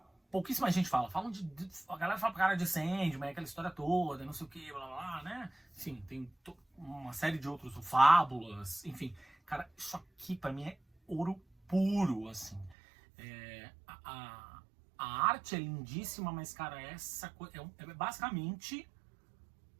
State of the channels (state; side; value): drops out; left; at 12.8 s